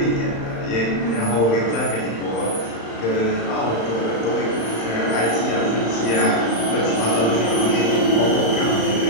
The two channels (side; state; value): right; late; 35 ms